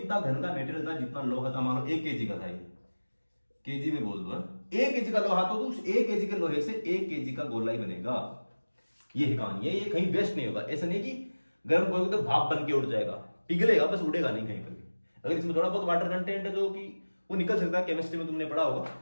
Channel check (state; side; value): inverted; both; correlation -1.00